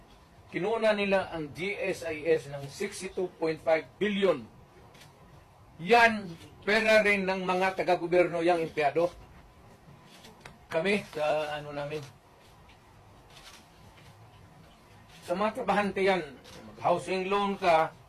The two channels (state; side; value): identical; both; correlation 1.00